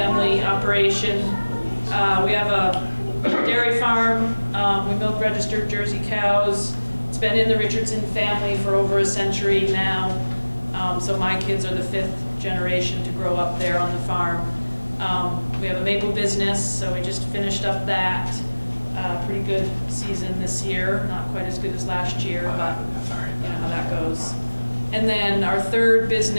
operation. We have a dairy farm. We milk registered Jersey cows. It's been in the Richardson family for over a century now. So my kids are the 5th generation to grow up there on the farm. We have a maple business, so we just finished up that. Pretty good season this year. Not quite as good as last year, but you know how that goes. And then our third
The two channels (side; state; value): both; inverted; correlation -1.00